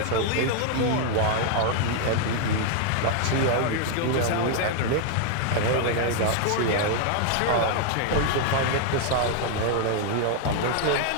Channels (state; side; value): different; both; correlation 0.00